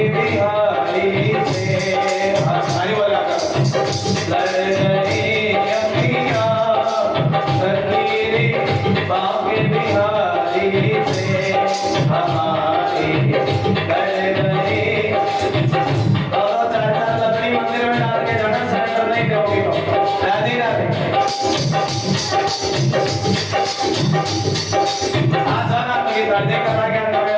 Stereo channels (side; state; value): both; identical; correlation 1.00